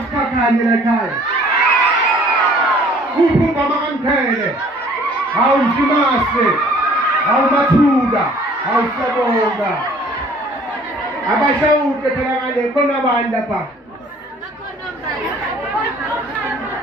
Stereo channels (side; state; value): both; normal; correlation 0.55